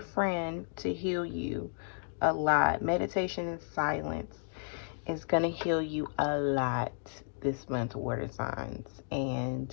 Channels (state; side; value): silent; right; digital silence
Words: friend to heal you a lot. Meditation and silence is going to heal you a lot this month, water signs. And